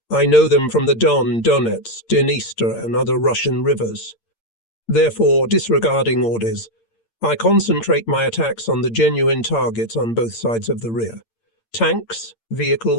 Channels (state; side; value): late; right; 8.8 ms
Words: I know them from the Don, Donets, Dniester, and other Russian rivers. Therefore, disregarding orders, I concentrate my attacks on the genuine targets on both sides of the rear. Tanks,